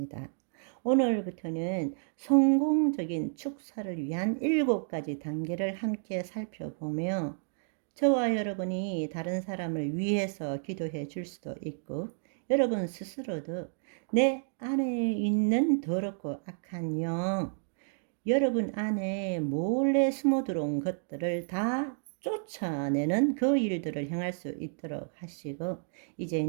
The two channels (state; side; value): silent; left; digital silence